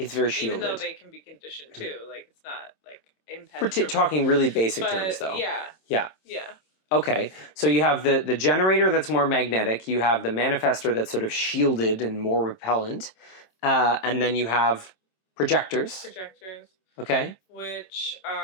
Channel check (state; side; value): late; right; 27 ms